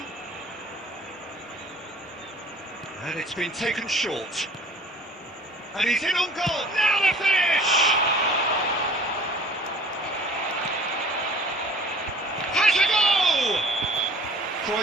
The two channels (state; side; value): normal; both; correlation 0.49